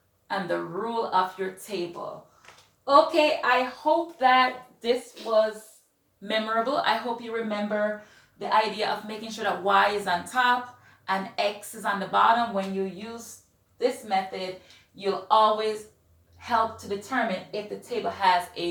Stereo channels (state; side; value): identical; both; correlation 1.00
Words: and the rule of your table. Okay, I hope that this was memorable. I hope you remember the idea of making sure that y is on top and x is on the bottom. When you use this method, you'll always help to determine if the table has